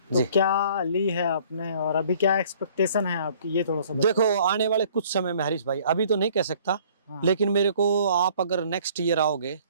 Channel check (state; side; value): inverted; both; correlation -0.56